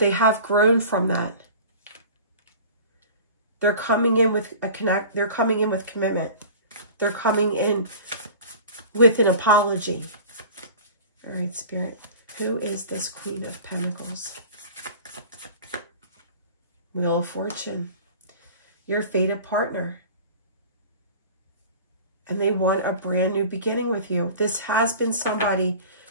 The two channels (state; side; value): inverted; both; correlation -0.40